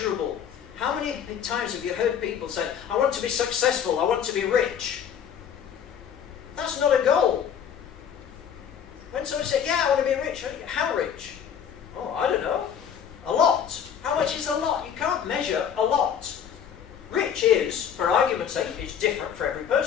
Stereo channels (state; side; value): quieter; right; 8.3 dB